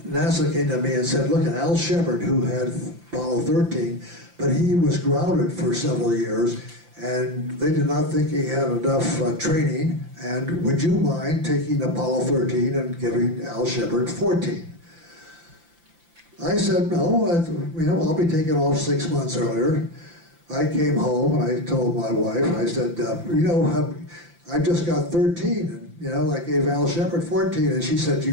came to me and said, look, Al Shepard, who had Apollo 13, but he was grounded for several years, and they did not think he had enough training, and would you mind taking Apollo 13 and giving Al Shepard 14? I said, no, I'll be taking off 6 months earlier. I came home and I told my wife, I said, I just got 13, and I gave Al Shepard 14, and she said,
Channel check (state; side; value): late; left; 5.8 ms